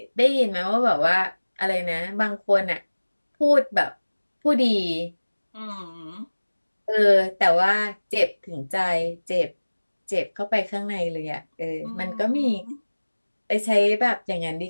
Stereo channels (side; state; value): both; inverted; correlation -1.00